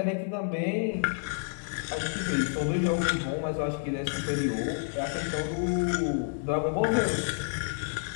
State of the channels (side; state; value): right; silent; digital silence